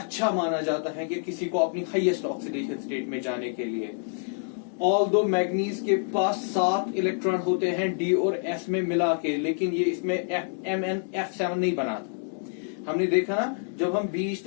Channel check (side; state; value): right; silent; digital silence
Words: माना जाता है कि किसी को अपनी हाईएस्ट ऑक्सीडेशन स्टेट में जाने के लिए। ऑल्दो मैग्नीज के पास 7 इलेक्ट्रॉन होते हैं डी और एस में मिला के, लेकिन ये इसमें MnF7 नहीं बनाता। हमने देखा ना, जब हम 20